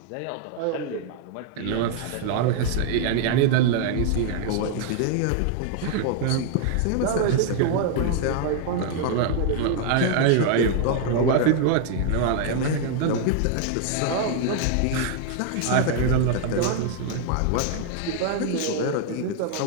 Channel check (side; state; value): both; different; correlation 0.00